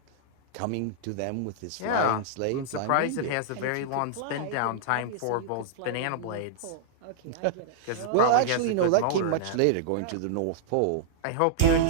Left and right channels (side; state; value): both; different; correlation -0.02